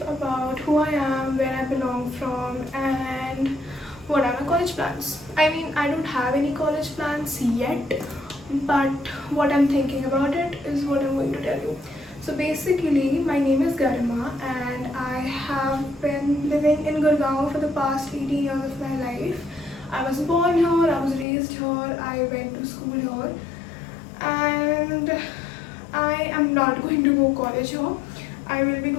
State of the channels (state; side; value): drops out; right; at 21.2 s